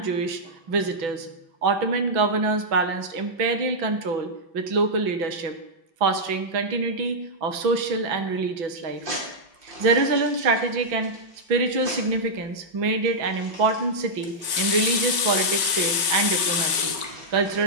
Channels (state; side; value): late; left; 5.3 ms